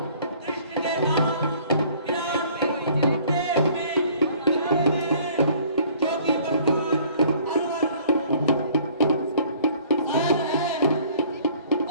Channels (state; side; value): inverted; both; correlation -0.56